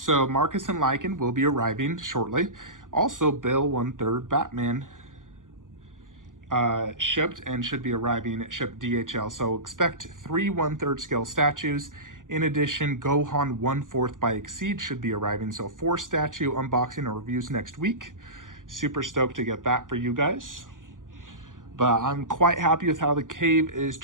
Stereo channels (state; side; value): late; left; 0.88 ms